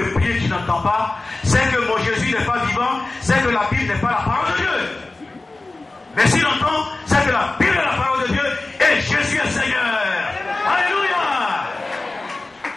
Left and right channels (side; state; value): right; quieter; 3.2 dB